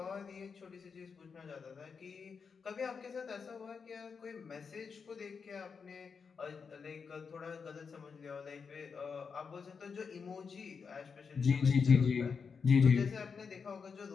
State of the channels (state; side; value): quieter; right; 5.7 dB